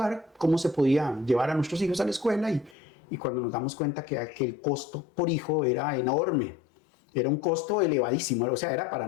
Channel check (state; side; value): drops out; right; at 2.8 s